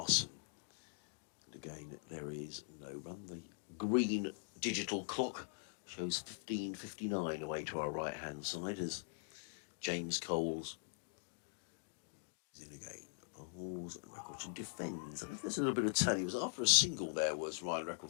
And again, there is no run. The green digital clock shows 15:59 away to our right-hand side as James Coles is in again. Bowls and Reckleton defends. I think there's a little bit of turn. He was after a single there, was Ryan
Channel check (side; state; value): right; silent; digital silence